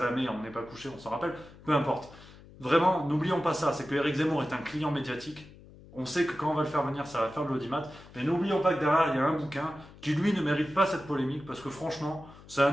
on n'est pas couché, on s'en rappelle, peu importe. Vraiment, n'oublions pas ça, c'est que Éric Zemmour est un client médiatique. On sait que quand on va le faire venir, ça va faire de l'audimat, mais n'oublions pas que derrière, il y a un bouquin qui, lui, ne mérite pas cette polémique, parce que franchement, c'est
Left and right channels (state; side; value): noise; left; hum, 21 dB below the sound